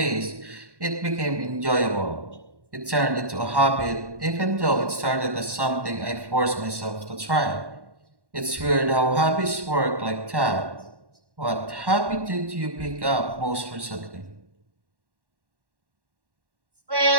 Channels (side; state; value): left; late; 1.1 ms